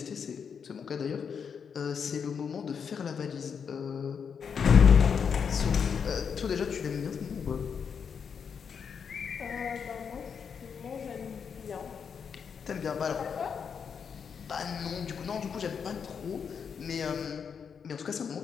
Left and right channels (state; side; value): quieter; right; 6.7 dB